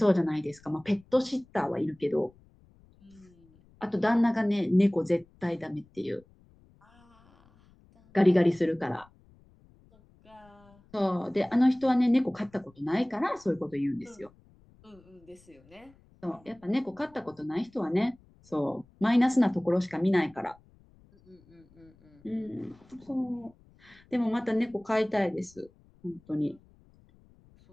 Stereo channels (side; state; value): left; noise; rumble, 29 dB below the sound